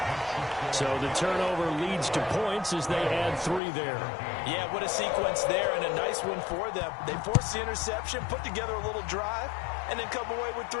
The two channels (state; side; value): drops out; right; at 3.6 s